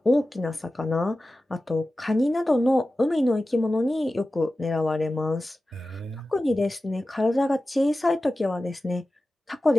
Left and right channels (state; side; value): normal; both; correlation 0.95